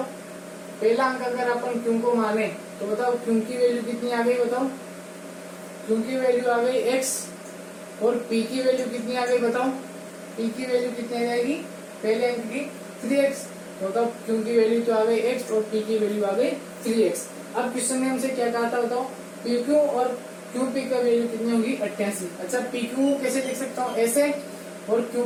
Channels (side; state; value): both; identical; correlation 1.00